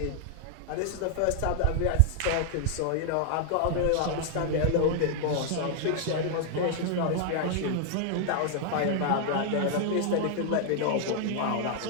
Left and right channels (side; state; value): both; different; correlation 0.00